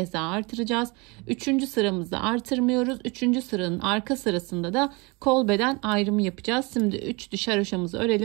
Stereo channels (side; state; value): left; quieter; 27.6 dB